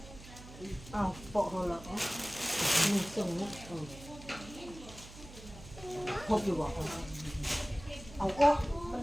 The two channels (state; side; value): noise; right; hum, 16 dB below the sound